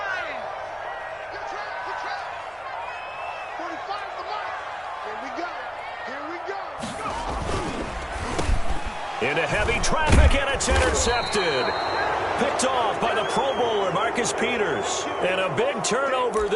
Into heavy traffic, and it's intercepted. Picked off by the Pro Bowler, Marcus Peters. And a big turnover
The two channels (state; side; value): identical; both; correlation 1.00